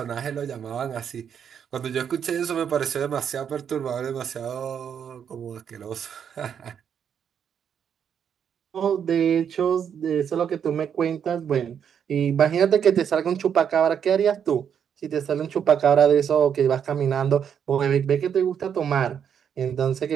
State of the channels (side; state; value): left; quieter; 8.0 dB